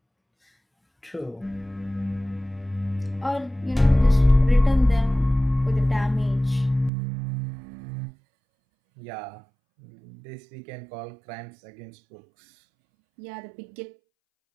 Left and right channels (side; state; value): left; drops out; at 6.9 s